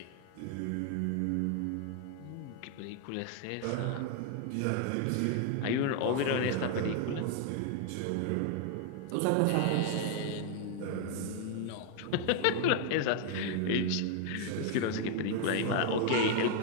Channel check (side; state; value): both; different; correlation 0.00